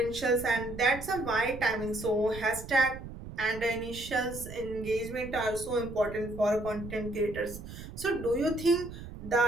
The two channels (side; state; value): right; noise; rumble, 12 dB below the sound